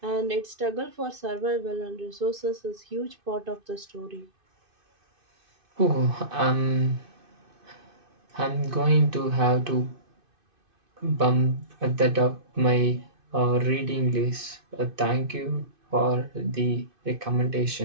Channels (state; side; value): late; left; 2.5 ms